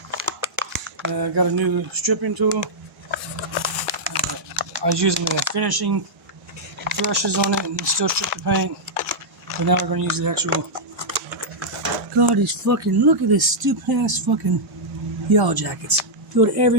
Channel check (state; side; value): late; left; 2.0 ms